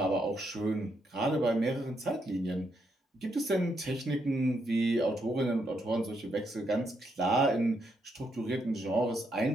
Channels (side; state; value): both; normal; correlation 0.78